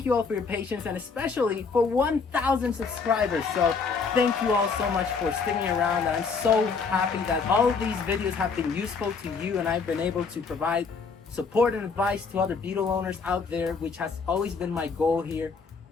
you all for your patience, and especially for 1,000 subscribers. So thank you all so much for sticking around, and I'm so happy that all of these videos have been useful to you, and I've been able to provide support and advice to other Beetle owners out there, which has always been my goal here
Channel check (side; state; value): right; quieter; 5.1 dB